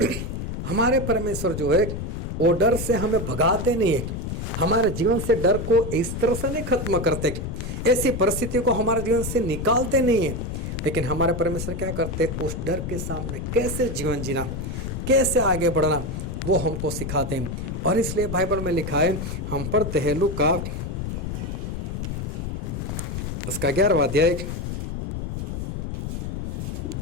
हमारे परमेश्वर जो है वो डर से हमें भगाते नहीं है, हमारे जीवन से डर को इस तरह से नहीं खत्म करते, ऐसी परिस्थिति को हमारे जीवन से निकालते नहीं है। लेकिन हमारे परमेश्वर क्या करते, उस डर के सामने कैसे जीवन जीना, कैसे आगे बढ़ना, वो हमको सिखाते हैं। और इसलिए बाइबल में लिखा है, हम पढ़ते हैं लूका उसका 11वां अध्याय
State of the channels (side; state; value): left; noise; rumble, 5 dB below the sound